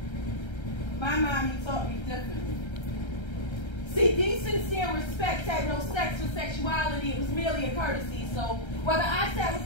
my mommy taught me differently. See, decency and respect had no sex or sexuality. It was merely a courtesy. So whether I sat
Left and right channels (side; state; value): right; late; 1.3 ms